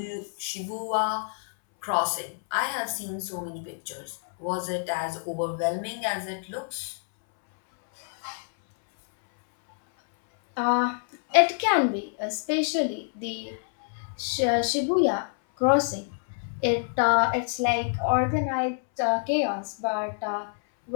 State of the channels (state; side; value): silent; right; 60 dB below the other